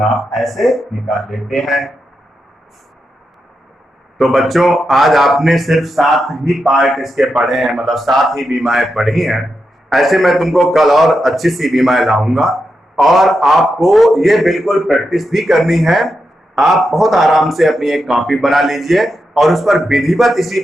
ऐसे निकाल लेते हैं। तो बच्चों आज आपने सिर्फ 7 ही पार्ट इसके पढ़े हैं, मतलब 7 ही बीमाएं पढ़ी हैं। ऐसे मैं तुमको कल और अच्छी सी बीमाएं लाऊंगा, और आपको ये बिल्कुल प्रैक्टिस भी करनी है। आप बहुत आराम से अपनी एक कॉपी बना लीजिए और उस पर विधिवत इसी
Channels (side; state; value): both; normal; correlation 0.87